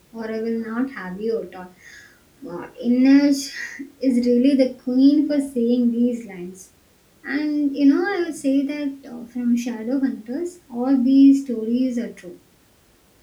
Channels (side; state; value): both; identical; correlation 1.00